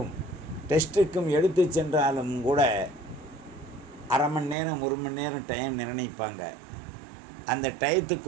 டெஸ்ட்டுக்கும் எடுத்து சென்றாலும் கூட அரை மணி நேரம் 1 மணி நேரம் டைம் நிர்ணயிப்பாங்க. அந்த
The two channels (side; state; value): left; drops out; at 4.5 s